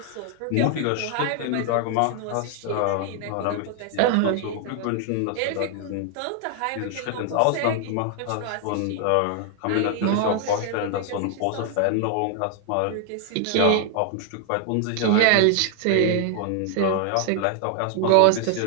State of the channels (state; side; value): different; both; correlation 0.00